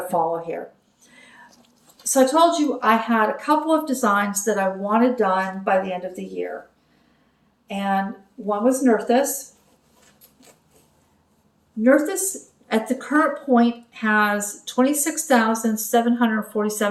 follow here. So I told you I had a couple of designs that I wanted done by the end of the year. And one was Nerthus. Nerthus at the current point has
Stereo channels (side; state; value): both; identical; correlation 1.00